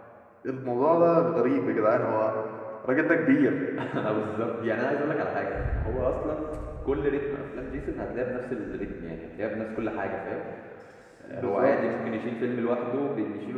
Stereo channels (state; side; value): identical; both; correlation 1.00